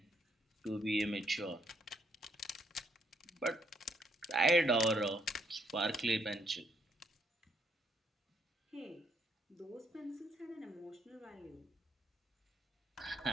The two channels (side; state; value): both; normal; correlation 0.71